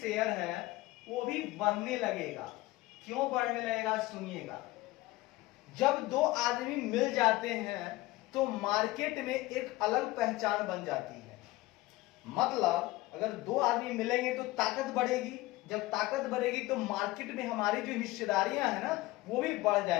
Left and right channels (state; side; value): quieter; right; 19.1 dB